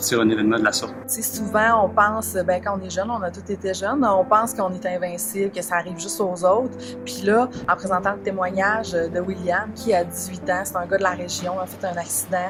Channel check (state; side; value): identical; both; correlation 1.00